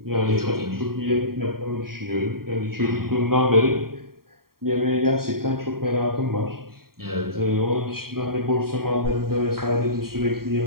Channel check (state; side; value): late; left; 0.93 ms